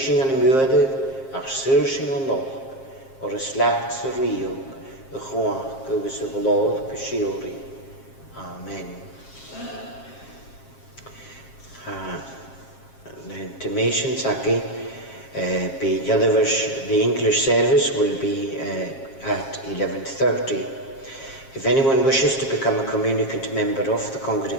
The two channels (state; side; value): late; right; 7.5 ms